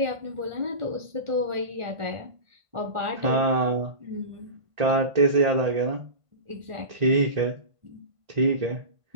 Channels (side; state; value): left; late; 1.5 ms